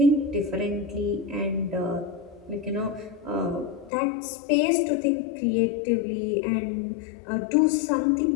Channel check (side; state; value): right; drops out; at 3.9 s